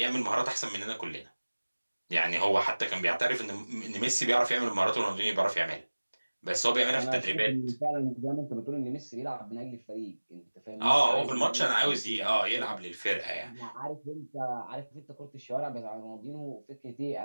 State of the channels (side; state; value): both; inverted; correlation -1.00